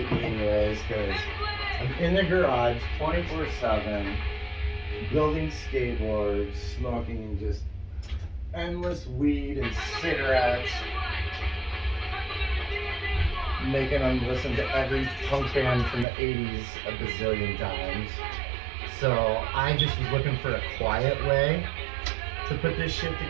me anyways, because I'm in the garage 24/7, building skateboards, smoking just endless weed and cigarettes, making them listen to every punk band from the 80s a bazillion times. So I just was looking for a quiet way to put this shit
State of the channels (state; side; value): drops out; left; at 16.1 s